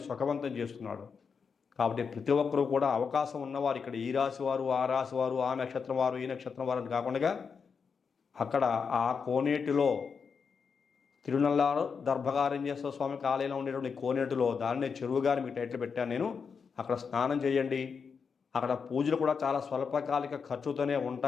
సుఖవంతం చేస్తున్నాడు. కాబట్టి ప్రతి ఒక్కరూ కూడా అవకాశం ఉన్నవారు ఇక్కడ ఈ రాశి వారు, ఆ రాశి వారు, ఆ నక్షత్రం వారు, ఈ నక్షత్రం వారు అని కాకుండా అక్కడ ఆ కోనేటిలో తిరునల్లారు దర్భకారణ్యేశ్వర స్వామికి ఆలయంలో ఉండేటువంటి కోనేటిలో, దాన్నే చెరువుగాని మీకు టైటిల్ పెట్టాను నేను, అక్కడ స్నానం చేయండి. అక్కడ పూజలు కూడా చాలా స్వల్పకాలిక ఖర్చుతోనే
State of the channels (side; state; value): right; quieter; 5.9 dB